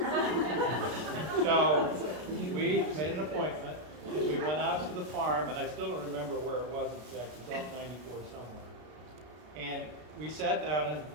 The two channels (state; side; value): late; left; 33 ms